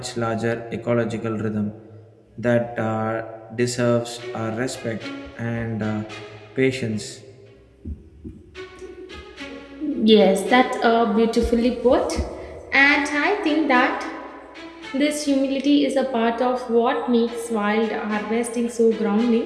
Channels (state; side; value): identical; both; correlation 1.00